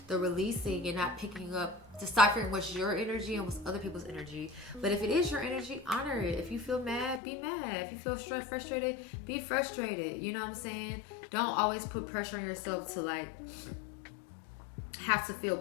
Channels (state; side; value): drops out; right; at 7.2 s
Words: the releasing and not picking up, deciphering what's your energy and what's other people's energy. But if it is your energy, honor it. If you feel mad, be mad. If you feel frustrated, be frustrated. You know what I'm saying? Don't always put pressure on yourself to have to